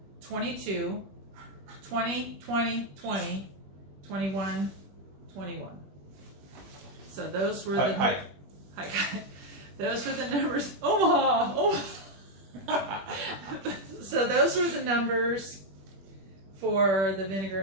22, 20, 20, 20, 21, 21. So those were the... Hi. Hi, guys. Those were the numbers. Omaha! Omaha! So those were the numbers for the vinegar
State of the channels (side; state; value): left; late; 21 ms